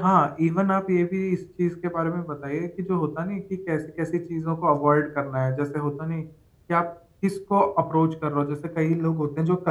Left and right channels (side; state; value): both; identical; correlation 1.00